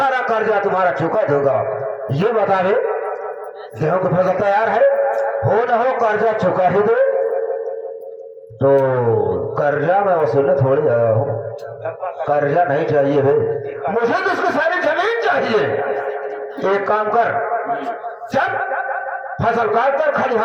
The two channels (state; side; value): identical; both; correlation 1.00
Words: कर्जा तुम्हारा चुका दूंगा। ये बतावे गेहूं की फसल तैयार है, हो न हो कर्जा चुका ही दो। तो कर्जा मैं वसूलने थोड़ी आया हूँ, कर्जा नहीं चाहिए भाई, मुझे तो उसकी सारी जमीन चाहिए। एक काम कर, जब फसल काट कर